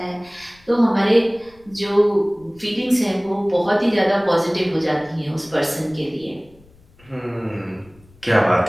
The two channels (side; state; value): left; noise; rumble, 28 dB below the sound